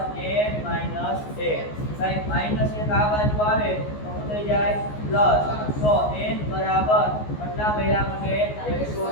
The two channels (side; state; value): right; late; 14 ms